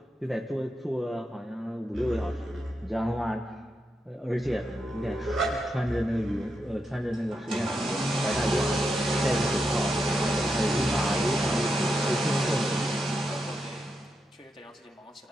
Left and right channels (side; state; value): both; normal; correlation 0.85